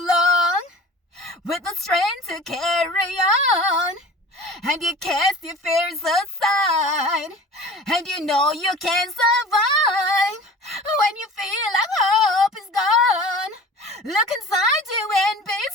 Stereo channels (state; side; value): normal; both; correlation 0.41